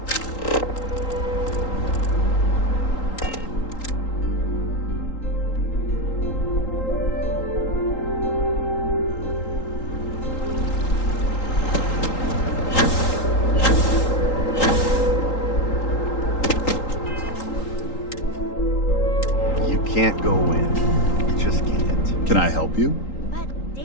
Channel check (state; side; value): late; right; 3.8 ms